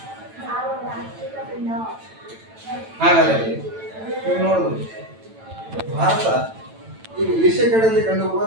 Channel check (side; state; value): left; late; 9.0 ms